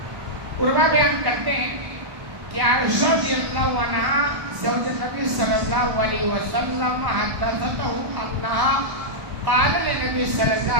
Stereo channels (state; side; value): late; left; 1.1 ms